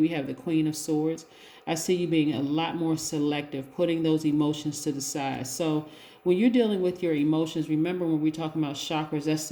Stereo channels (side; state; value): both; identical; correlation 1.00